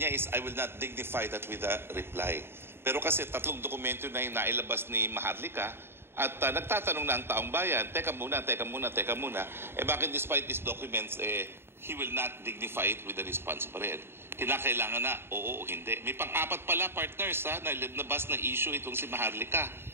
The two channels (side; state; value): left; late; 0.11 ms